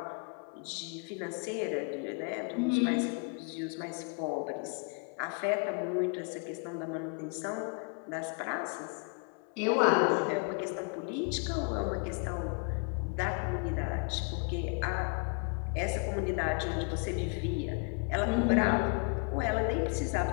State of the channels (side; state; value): right; quieter; 36.6 dB